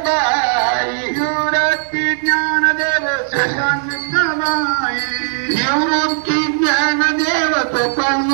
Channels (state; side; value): silent; left; digital silence